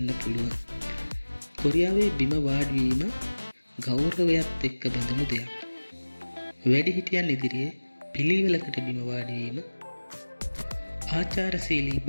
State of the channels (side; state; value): both; inverted; correlation -1.00